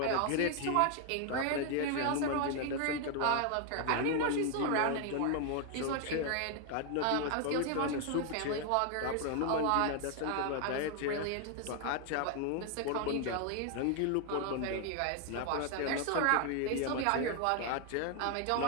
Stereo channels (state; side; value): different; both; correlation 0.00